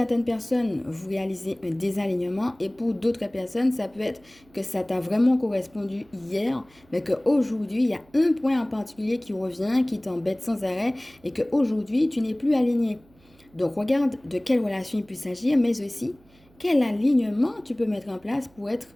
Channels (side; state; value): right; noise; hum, 30 dB below the sound